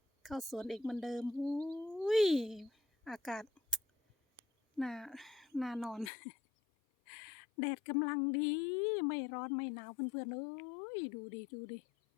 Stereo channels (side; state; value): right; drops out; at 6.1 s